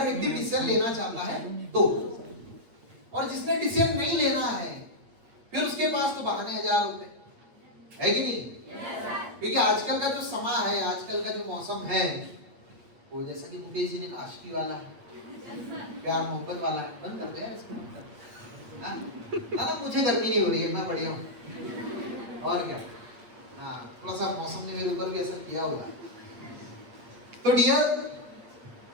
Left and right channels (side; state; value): left; late; 8.5 ms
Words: व्यक्ति डिसीजन लेना चाहता है तो, और जिसने डिसीजन नहीं लेना है फिर उसके पास तो बहाने हजार होते हैं, है कि नहीं? क्योंकि आजकल का जो समय है, आजकल का जो मौसम है, वो जैसा कि मुकेश जी ने कहा, आशिकी वाला है, प्यार मोहब्बत वाला है। बंद कर दो यार इसको, ना मुझे गर्मी नहीं हो रही है, मैं बढ़िया हूँ। और क्या, हाँ, थोड़ा सा मौसम ने मेरे ऊपर भी असर किया हुआ है। तो डियर,